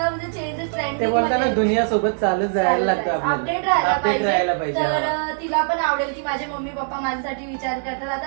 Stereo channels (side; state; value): left; silent; digital silence